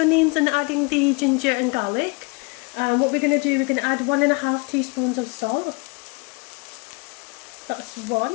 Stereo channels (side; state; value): right; quieter; 30.3 dB